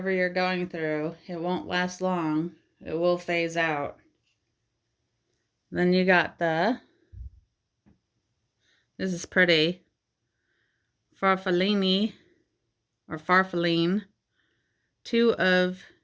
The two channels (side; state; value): both; identical; correlation 1.00